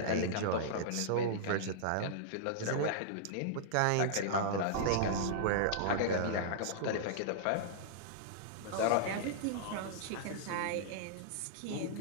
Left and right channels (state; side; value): different; both; correlation -0.02